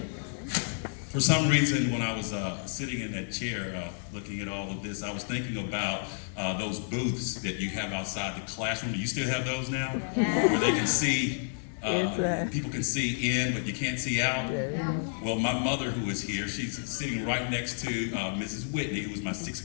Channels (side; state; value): right; silent; digital silence